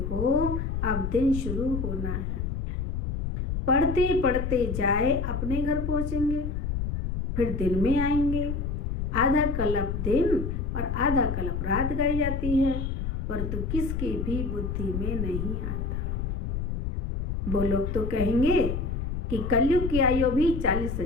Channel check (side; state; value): left; noise; rumble, 2 dB below the sound